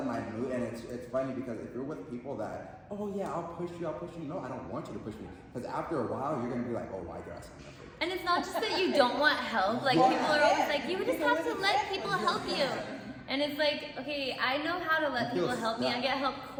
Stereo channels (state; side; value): identical; both; correlation 1.00